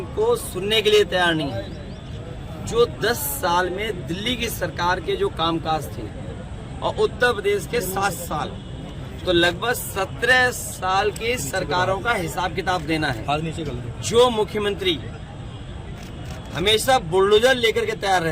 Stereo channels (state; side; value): identical; both; correlation 1.00